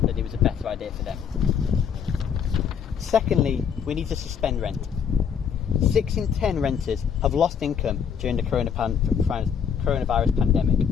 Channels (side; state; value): right; quieter; 7.4 dB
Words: that it was a better idea for them. Secondly, we need to suspend rent. 6 in 10 renters have lost income during the coronavirus pandemic,